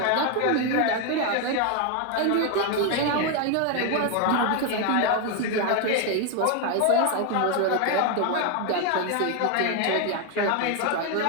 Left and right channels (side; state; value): both; different; correlation 0.01